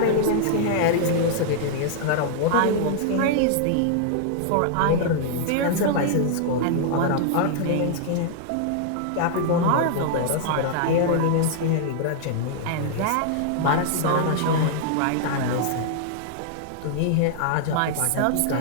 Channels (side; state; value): both; different; correlation -0.01